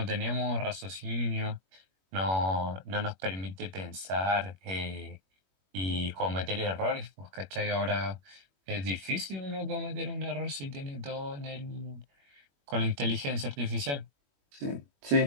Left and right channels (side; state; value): left; late; 21 ms